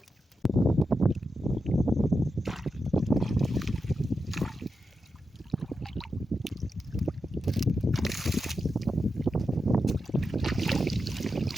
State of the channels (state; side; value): normal; both; correlation 0.88